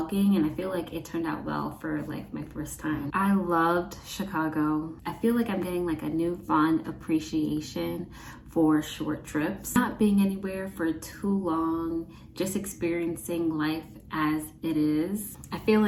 and I feel like it turned out well for like my first time. I loved Chicago. I feel like I'm getting like a newfound appreciation for short trips. Not being anywhere for too long, just experiencing life as it is. I feel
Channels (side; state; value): both; identical; correlation 1.00